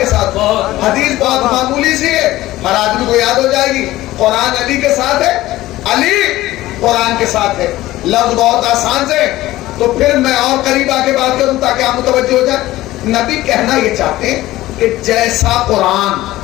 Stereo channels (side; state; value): right; quieter; 16.5 dB